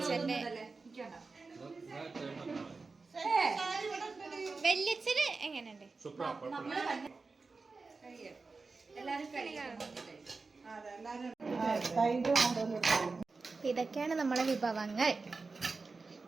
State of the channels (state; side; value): quieter; left; 4.1 dB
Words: വല്യച്ഛന് എങ്ങനെയുണ്ട്? ഇതൊക്കെയാണ് നമ്മളെ വിഭവങ്ങൾ.